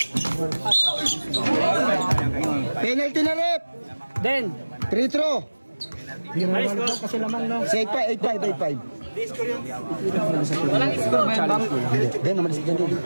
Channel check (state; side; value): inverted; both; correlation -1.00